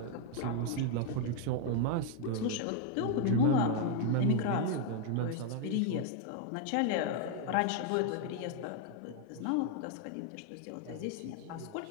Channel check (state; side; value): different; both; correlation 0.00